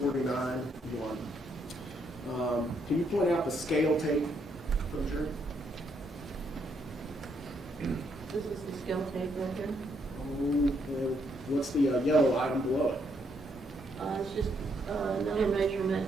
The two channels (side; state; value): both; normal; correlation 0.74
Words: 1. Can you point out the scale tape for the jury? This is the scale tape right here. Oh, what's the yellow item below it? It's just another measurement,